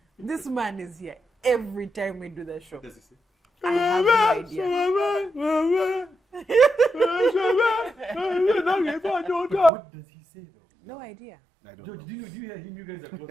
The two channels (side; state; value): left; drops out; at 9.7 s